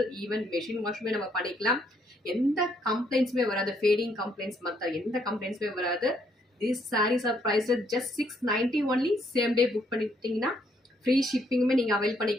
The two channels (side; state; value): both; normal; correlation 0.71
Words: even machine washமே நம்ம பண்ணிக்கலாம். எந்த கம்ப்ளைண்ட்ஸுமே வராது, ஃபேடிங் கம்ப்ளைண்ட்ஸ் மற்ற எந்த கம்ப்ளைண்ட்ஸுமே வராது. These sarees are priced at just $690 only. Same day book பண்ணிட்டீங்கன்னா ஃப்ரீ ஷிப்பிங்குமே நீங்கள் அவைல்